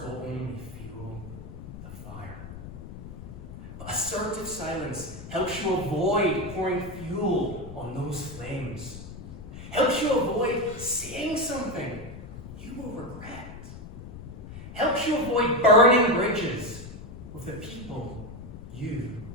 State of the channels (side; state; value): left; noise; rumble, 12 dB below the sound